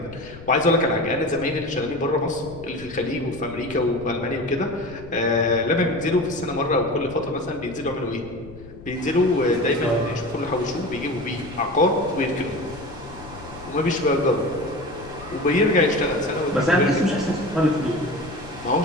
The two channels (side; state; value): left; noise; rumble, 17 dB below the sound